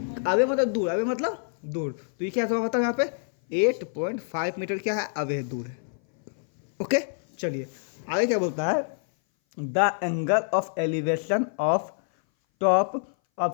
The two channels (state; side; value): silent; right; 58 dB below the other